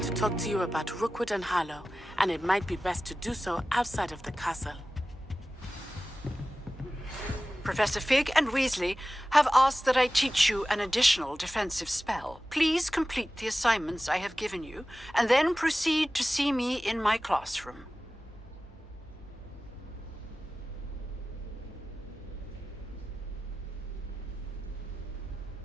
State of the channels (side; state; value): both; normal; correlation 0.96